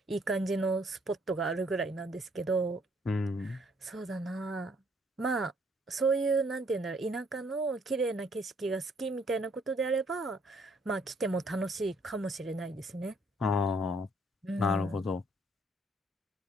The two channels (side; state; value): both; normal; correlation 0.65